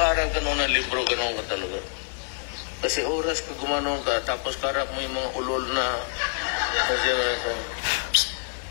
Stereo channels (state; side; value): silent; right; 61 dB below the other